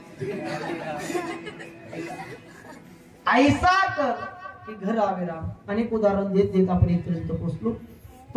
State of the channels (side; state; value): both; identical; correlation 1.00